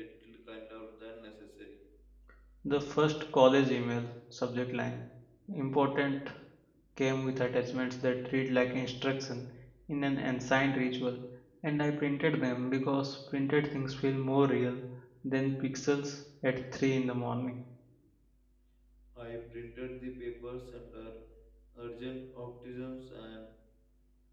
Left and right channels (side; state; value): both; identical; correlation 1.00